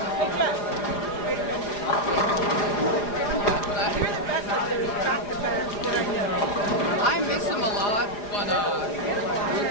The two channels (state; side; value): late; right; 4.9 ms